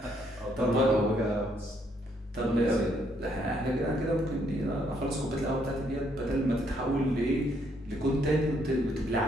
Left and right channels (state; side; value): normal; both; correlation 0.71